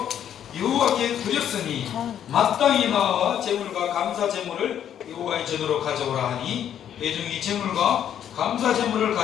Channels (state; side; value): quieter; right; 9.8 dB